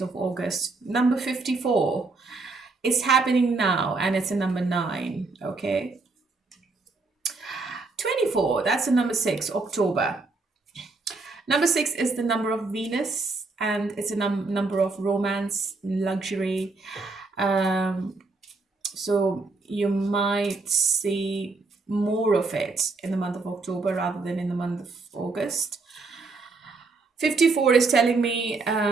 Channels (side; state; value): left; quieter; 3.8 dB